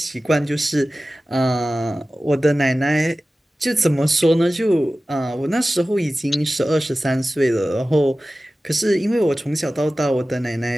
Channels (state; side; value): normal; both; correlation 0.96